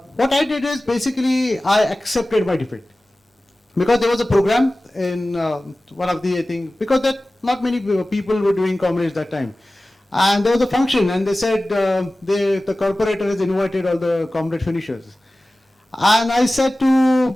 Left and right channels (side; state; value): both; normal; correlation 0.97